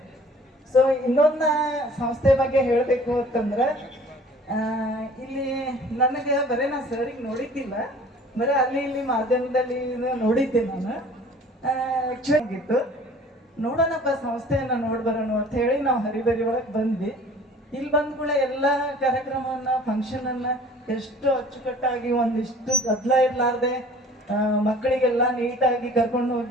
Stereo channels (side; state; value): both; normal; correlation 0.49